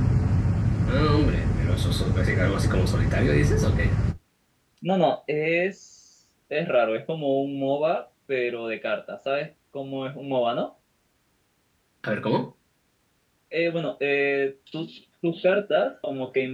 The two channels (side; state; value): both; identical; correlation 1.00